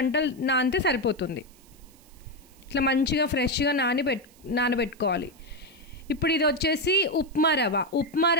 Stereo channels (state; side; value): noise; right; hiss, 27 dB below the sound